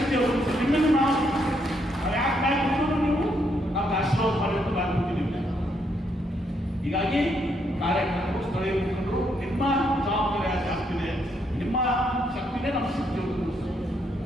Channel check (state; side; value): normal; both; correlation 0.75